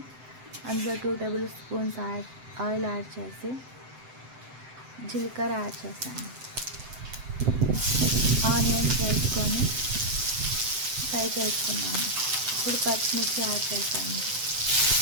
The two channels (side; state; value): left; late; 7.8 ms